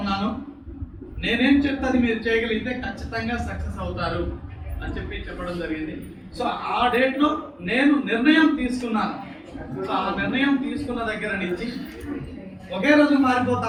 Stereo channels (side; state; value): both; identical; correlation 1.00